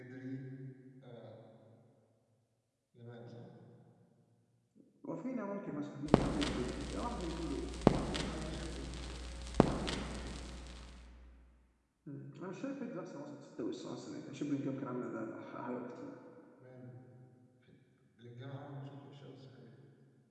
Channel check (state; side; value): identical; both; correlation 1.00